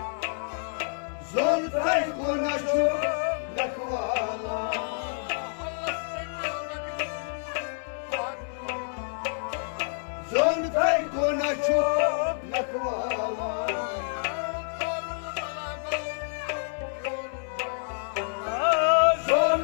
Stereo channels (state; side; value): silent; right; digital silence